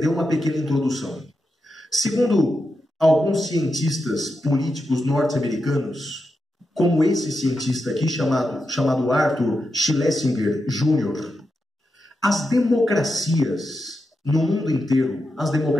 uma pequena introdução. Segundo alguns cientistas políticos norte-americanos, como esse cientista aqui, chamado Arthur Schlesinger Jr., as democracias no mundo inteiro, as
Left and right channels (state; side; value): normal; both; correlation 0.87